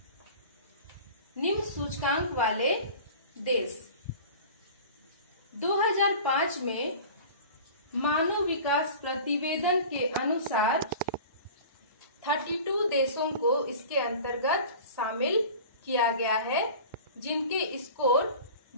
निम्न सूचकांक वाले देश. 2005 में मानव विकास प्रतिवेदन के अनुसार 32 देशों को इसके अंतर्गत शामिल किया गया है जिनके स्कोर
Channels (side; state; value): both; inverted; correlation -0.39